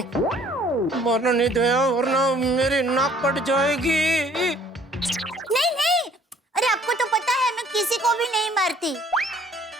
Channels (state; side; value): normal; both; correlation 0.58